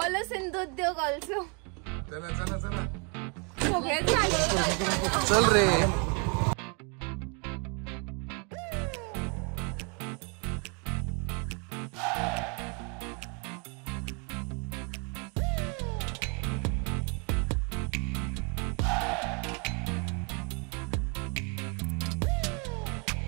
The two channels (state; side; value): quieter; left; 35.1 dB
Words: सिंधू उद्योग ऑल्सो. चला चला चला. चल रे.